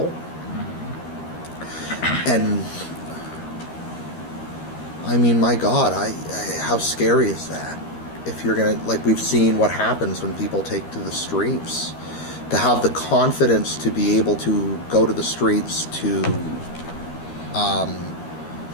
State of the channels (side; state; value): right; late; 13 ms